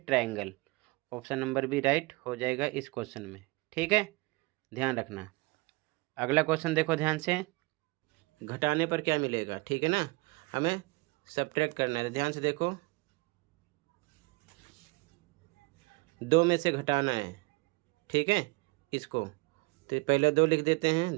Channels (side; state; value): left; quieter; 25.6 dB